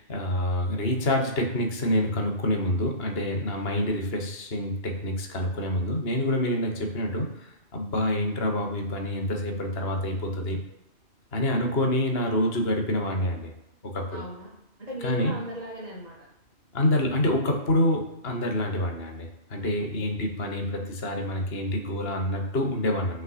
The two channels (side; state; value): right; late; 2.9 ms